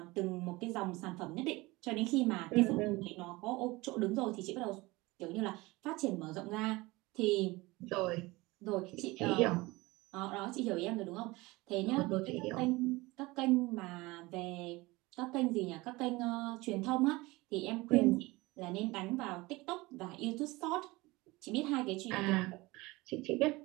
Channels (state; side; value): quieter; left; 21.8 dB